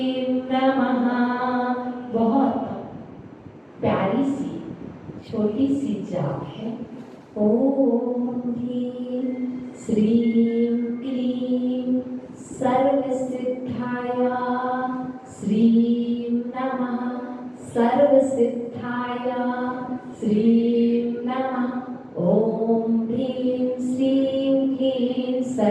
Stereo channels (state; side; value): identical; both; correlation 1.00